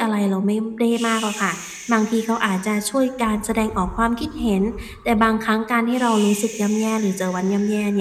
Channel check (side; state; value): both; identical; correlation 1.00